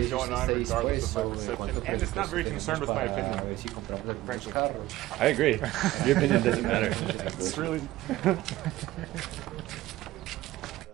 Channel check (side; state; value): left; quieter; 16.6 dB